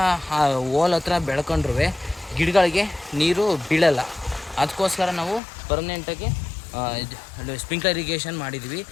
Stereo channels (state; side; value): drops out; right; at 5.4 s